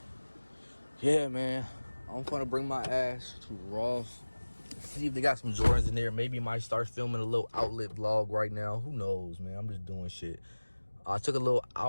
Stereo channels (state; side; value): inverted; both; correlation -1.00